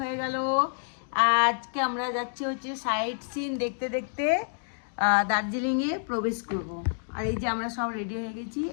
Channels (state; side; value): silent; right; digital silence